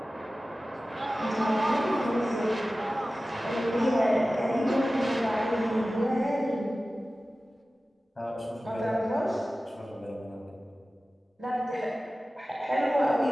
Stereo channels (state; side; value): normal; both; correlation 0.96